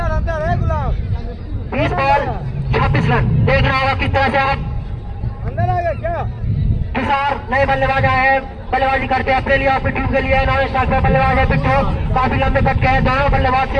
अंदर है गुलाब। 20 बॉल 26 रन। देखना होगा किस तरह से आप। अंदर आ गया क्या? तुषार नए बल्लेबाज आए हैं, बल्लेबाजी करते हैं अपने लिए, अपनी टीम के लिए। नॉन स्ट्राइक पर बल्लेबाज है पिट्ठू, काफी लंबे कट के हैं दोनों बल्लेबाज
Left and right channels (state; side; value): identical; both; correlation 1.00